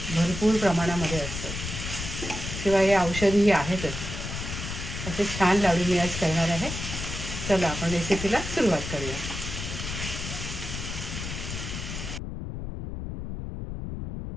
भरपूर प्रमाणामध्ये असतं. शिवाय हे औषधीही आहेतच. असे छान लाडू मी आज करणार आहे. चला आपण रेसिपीला सुरुवात करूया.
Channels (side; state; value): left; noise; rumble, 6 dB below the sound